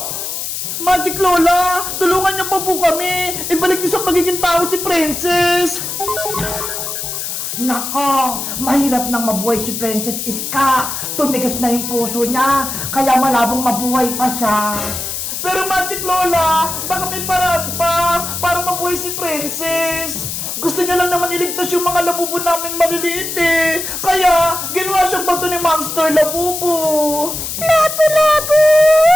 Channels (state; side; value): noise; left; hiss, 5 dB below the sound